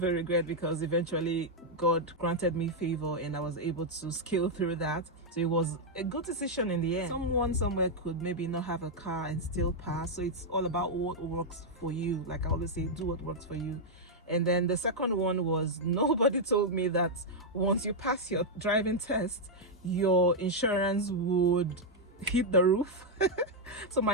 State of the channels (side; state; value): both; normal; correlation -0.02